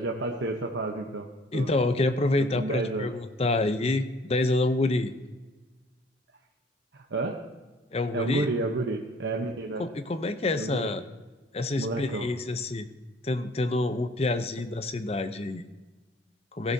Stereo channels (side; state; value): both; normal; correlation 0.55